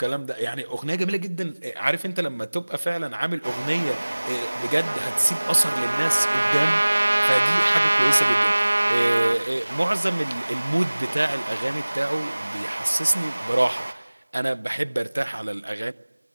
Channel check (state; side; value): inverted; both; correlation -1.00